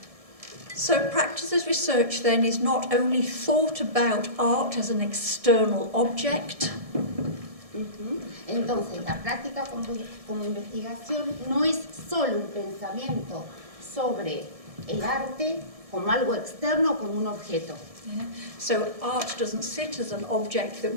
So practice as research then is not only thought about art as an external object, Entonces, la práctica como investigación no es solo un pensamiento sobre el arte como algo externo, como un objeto. yeah? So art doesn't sit as an object that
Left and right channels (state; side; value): late; left; 1.7 ms